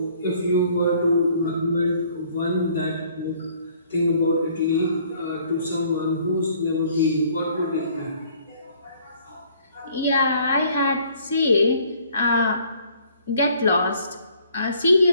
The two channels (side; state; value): both; inverted; correlation -0.59